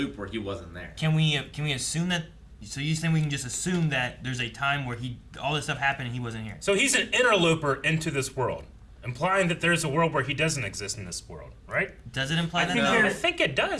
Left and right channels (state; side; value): identical; both; correlation 1.00